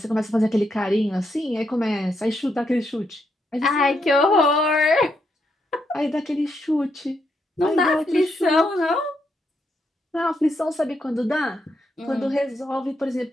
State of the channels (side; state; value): both; normal; correlation 0.79